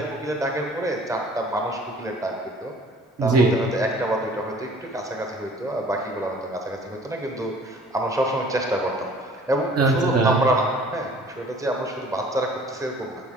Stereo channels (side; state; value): both; normal; correlation 0.51